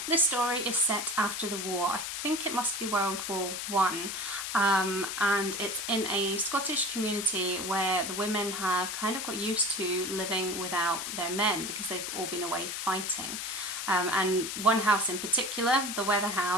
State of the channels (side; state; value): left; noise; hiss, 4 dB below the sound